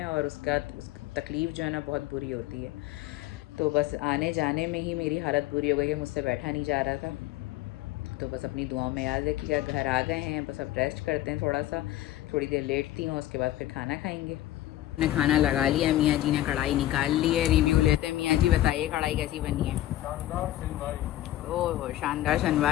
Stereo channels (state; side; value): quieter; right; 14.6 dB